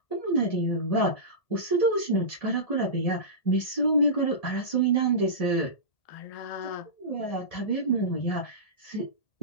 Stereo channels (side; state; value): right; late; 1.7 ms